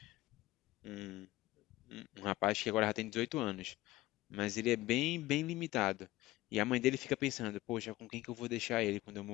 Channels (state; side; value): quieter; right; 17.6 dB